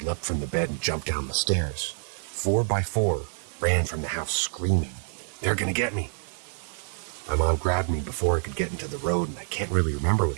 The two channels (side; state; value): left; silent; digital silence